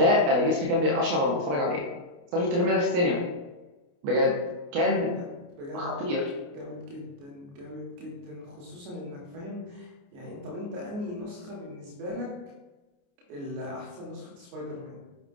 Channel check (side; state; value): left; late; 29 ms